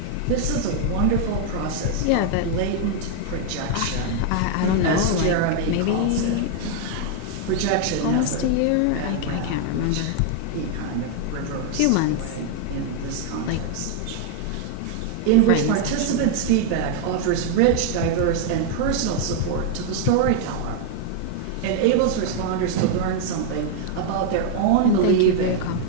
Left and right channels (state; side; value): different; both; correlation 0.00